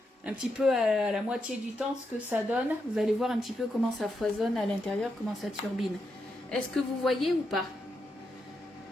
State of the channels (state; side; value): normal; both; correlation 0.83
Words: un petit peu à la moitié du temps ce que ça donne. Vous allez voir un petit peu comment ça foisonne à l'intérieur, comment ça turbine. Est-ce que vous voyez ou pas?